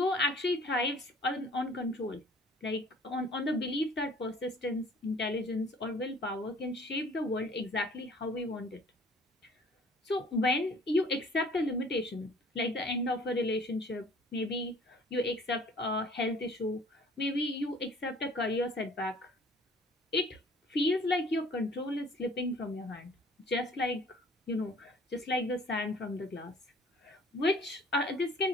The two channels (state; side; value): normal; both; correlation 0.53